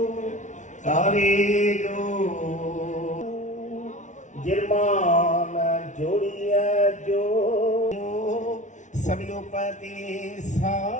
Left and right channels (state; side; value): late; right; 0.36 ms